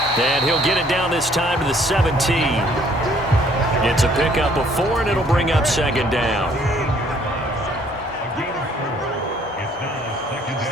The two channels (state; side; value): normal; both; correlation 0.61